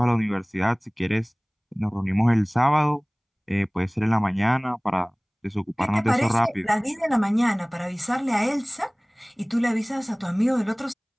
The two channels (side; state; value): both; identical; correlation 1.00